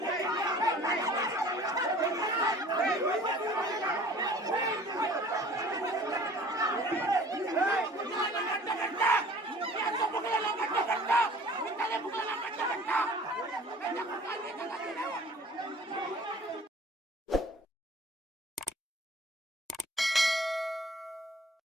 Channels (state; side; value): normal; both; correlation 0.48